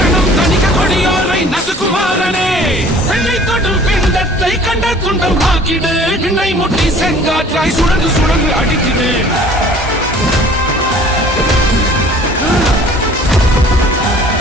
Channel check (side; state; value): both; normal; correlation 0.50